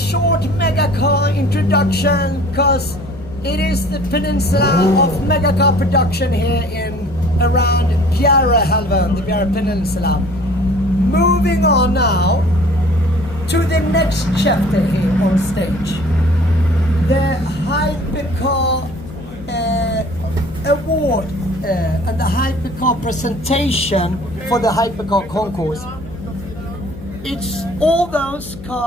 megacar introduction because it is the peninsula of megacar production here in around Bjärehalvön, the Bjäre Peninsula. Moving on now to the next chapter here on stage. The hypercar award and the hypercar presentation for the hypercar concourse. It's all those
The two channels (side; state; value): left; noise; hum, 15 dB below the sound